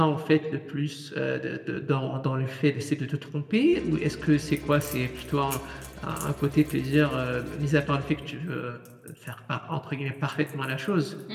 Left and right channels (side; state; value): both; identical; correlation 1.00